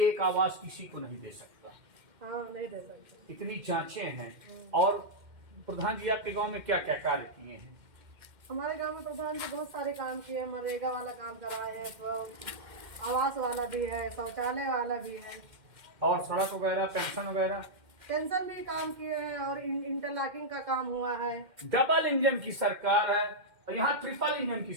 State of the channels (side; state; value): left; late; 2.1 ms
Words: एक आवास किसी को नहीं दे सकता। हाँ, नहीं दे सकते। इतनी जांचें हैं। और प्रधान जी आपके गांव में क्या क्या कार्य किए हैं? हमारे गांव में प्रधान जी बहुत सारे काम किए हैं। मनरेगा वाला काम कराए हैं, तो आवास वाला भी है, शौचालय वाला भी है, और सड़क वगैरह, पेंशन वगैरह, पेंशन भी काम किए हैं, और इंटरलॉकिंग का काम हुआ है। डबल इंजन की सरकार है और यहाँ ट्रिपल इंजन की